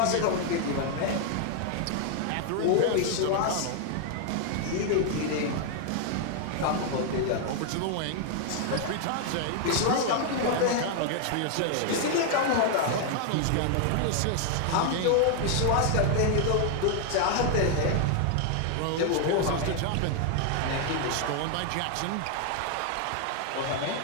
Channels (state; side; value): different; both; correlation 0.00